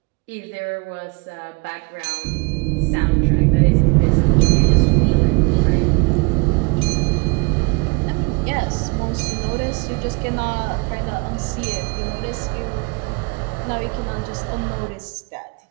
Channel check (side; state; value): left; quieter; 30.6 dB